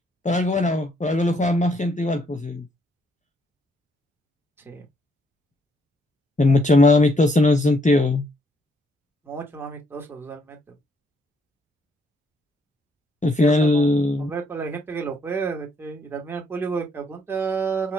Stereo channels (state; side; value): normal; both; correlation 0.70